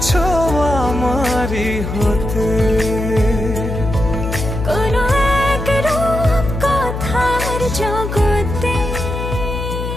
আমারই হতে কোনো এক রূপ কথার জগতে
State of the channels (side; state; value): left; noise; hum, 5 dB below the sound